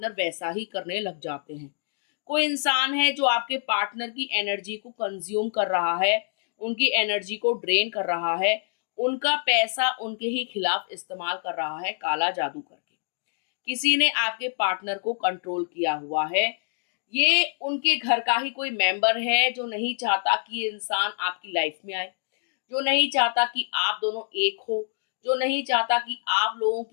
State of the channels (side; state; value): right; silent; 61 dB below the other